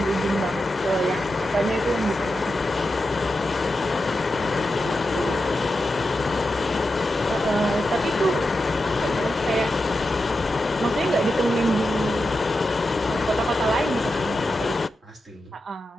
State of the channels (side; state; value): both; normal; correlation 0.89